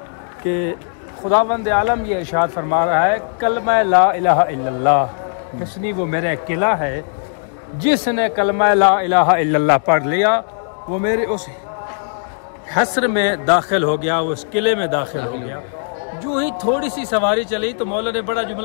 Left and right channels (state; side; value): silent; right; digital silence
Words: कि खुदावंद आलम ये इरशाद फरमा रहा है कलमा ला इलाहा इल्लल्लाह हिस्नी, वो मेरा किला है, जिसने कलमा ला इलाहा इल्लल्लाह पढ़ लिया वो मेरे उस हस्र में दाखिल हो गया, वो उस किले में दाखिल हो गया। जो ही थोड़ी सी सवारी चली तो मौला ने बड़ा